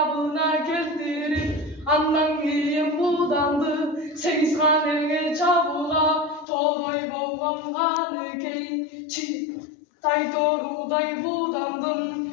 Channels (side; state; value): right; drops out; at 6.5 s